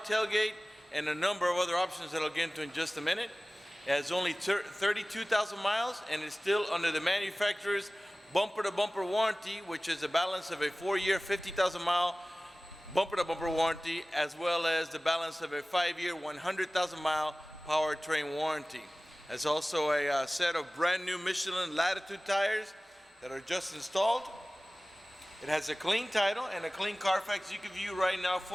and a number of other options that I'll get into in just a minute. It has only 32,000 miles and is still under the manufacturer's bumper-to-bumper warranty, which is a balance of a 4-year, 50,000-mile bumper-to-bumper warranty, as well as the balance of a 5-year, 100,000-mile powertrain warranty. There's also a set of brand new Michelin Latitude tires that are just installed. It has a clean title and a clean Carfax you can view right now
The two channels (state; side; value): normal; both; correlation 0.98